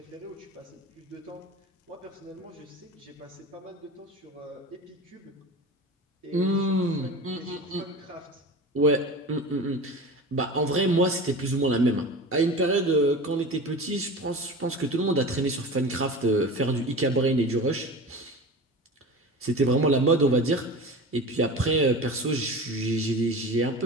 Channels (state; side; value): normal; both; correlation 0.32